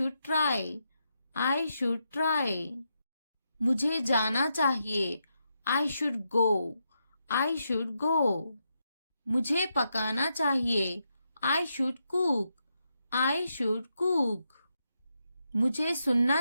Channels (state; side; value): inverted; both; correlation -0.83